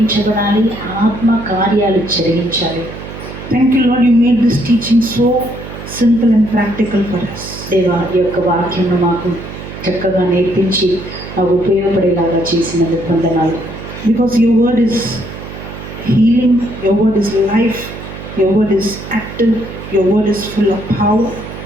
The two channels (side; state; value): right; noise; hum, 12 dB below the sound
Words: ఆత్మ కార్యాలు జరిగించాలి. Thank you, Lord, you made this teaching so simple and practical for us. దేవా, ఈ యొక్క వాక్యం మాకు చక్కగా నేర్పించి మాకు ఉపయోగపడేలాగా చేసినందుకు వందనాలు. Because your word is healing, your word is life, your word is active, your word is full of power,